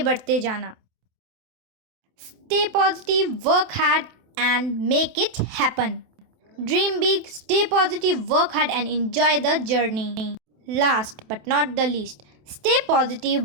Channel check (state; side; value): late; left; 28 ms